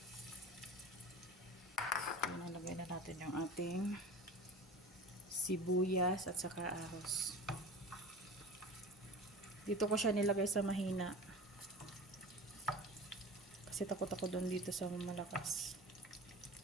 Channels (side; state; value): both; normal; correlation 0.34